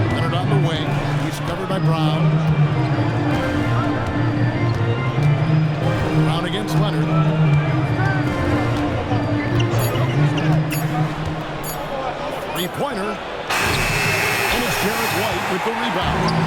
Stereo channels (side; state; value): both; identical; correlation 1.00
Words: Leonard on the wing. He's covered by Brown. Brown against Leonard. Three-pointer. And it's Jarrett White with the rebound.